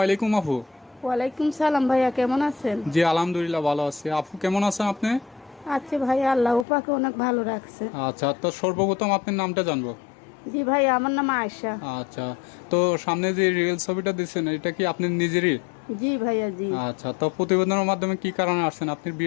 আলাইকুম আপু। ওয়ালাইকুম সালাম ভাইয়া, কেমন আছেন? জি আলহামদুলিল্লাহ ভালো আছি। আপু কেমন আছেন আপনি? আচ্ছা ভাইয়া, আল্লাহ পাকে অনেক ভালো রাখছে। আচ্ছা, তো সর্বপ্রথম আপনার নামটা জানবো। জি ভাইয়া, আমার নাম আয়েশা। আচ্ছা, তো সামনে যে রিয়েল ছবিটা দিচ্ছেন এটা কি আপনি নিজেরই? জি ভাইয়া জি। আচ্ছা, তো প্রতিবেদনের মাধ্যমে কি কারণে আসছেন? আপনার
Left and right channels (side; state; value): right; drops out; at 6.7 s